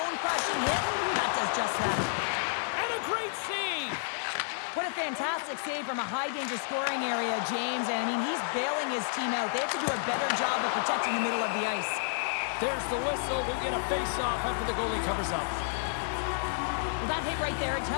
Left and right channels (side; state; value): right; silent; digital silence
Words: hit, that does just that. And a great save. What a fantastic save from a high-danger scoring area, James. And, I mean, he's bailing his team out. They have to do a better job of protecting the middle of the ice. There's the whistle. We'll get a face-off after the goalie covers up. Well, that hit right there, it